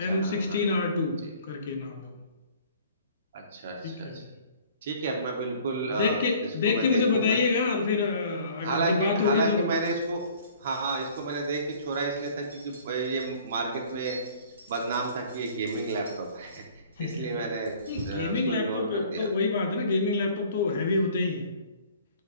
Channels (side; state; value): both; inverted; correlation -0.52